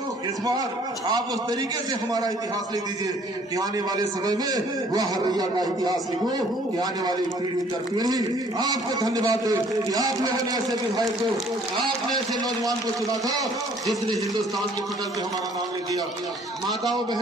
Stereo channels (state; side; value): normal; both; correlation 0.58